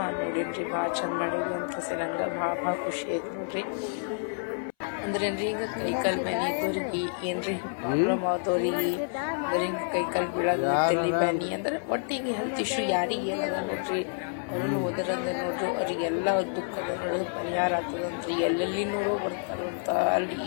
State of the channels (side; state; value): right; silent; 59 dB below the other